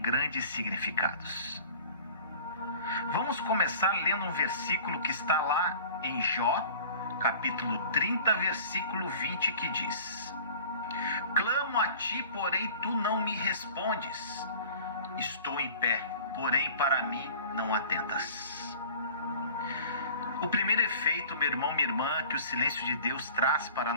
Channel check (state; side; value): inverted; both; correlation -0.45